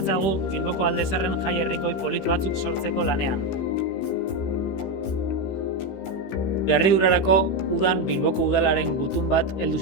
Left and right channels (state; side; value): late; right; 15 ms